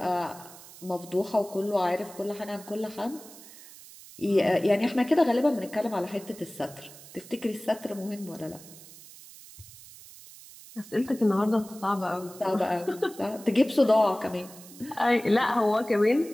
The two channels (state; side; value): noise; right; hiss, 19 dB below the sound